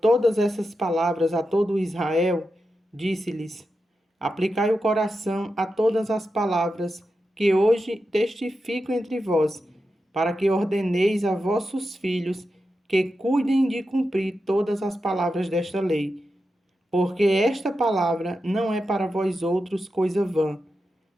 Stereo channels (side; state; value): both; normal; correlation 0.89